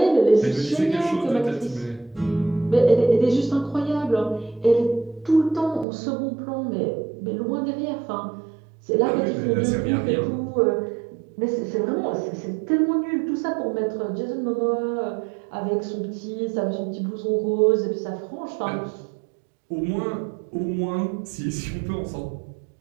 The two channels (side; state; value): left; drops out; at 5.9 s